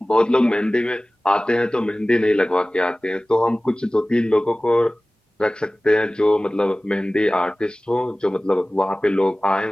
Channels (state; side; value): normal; both; correlation 0.98